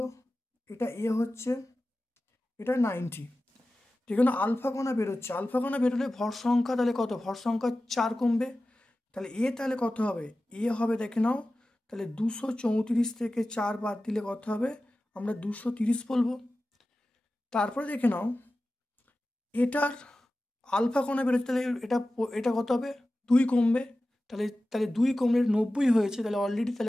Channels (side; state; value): both; normal; correlation 0.95